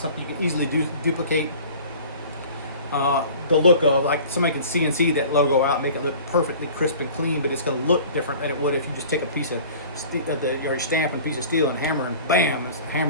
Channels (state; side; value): inverted; both; correlation -0.44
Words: you can easily duplicate the look of. Like somebody can CNC that logo out, make it look perfectly crisp and clean, but it's going to look different than it would if you just take a piece of your stamp and piece of steel and hammer and bam,